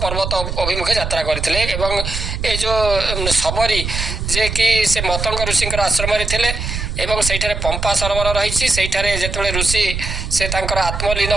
ପର୍ବତ ଅଭିମୁଖେ ଯାତ୍ରା କରିଥିଲେ ଏବଂ ଏ ଯେଉଁ ଶବରୀ ଯିଏକି ସେ ମତଙ୍ଗ ଋଷିଙ୍କର ଆଶ୍ରମରେ ଥିଲେ ଏବଂ ସେଇଠାରେ ପମ୍ପା ସରୋବର ରହିଛି, ସେଇଠାରେ ଯେତେବେଳେ ଋଷି ସେ ତାଙ୍କର ଆତ୍ମଲୀନ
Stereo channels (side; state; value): right; noise; rumble, 4 dB below the sound